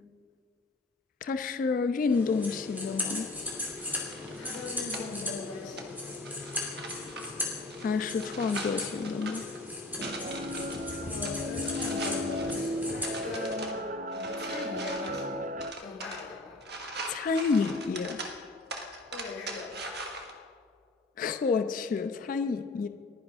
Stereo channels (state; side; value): quieter; right; 3.0 dB